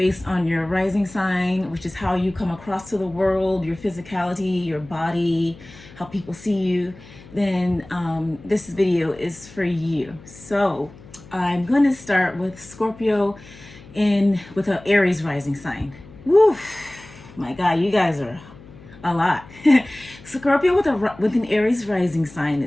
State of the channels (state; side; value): noise; left; hum, 20 dB below the sound